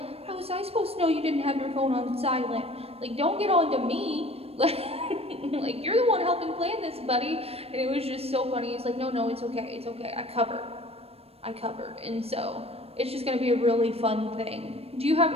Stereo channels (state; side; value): late; left; 0.29 ms